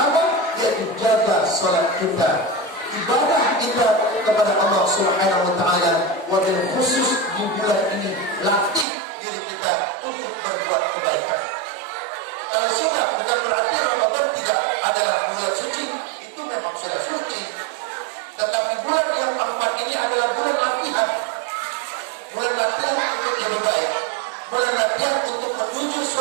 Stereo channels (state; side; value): drops out; left; at 8.8 s